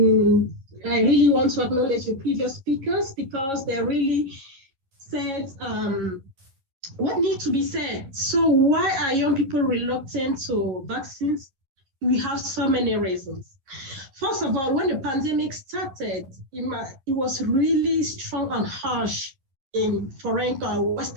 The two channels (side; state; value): left; late; 11 ms